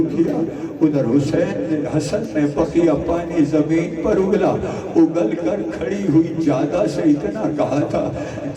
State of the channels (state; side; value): identical; both; correlation 1.00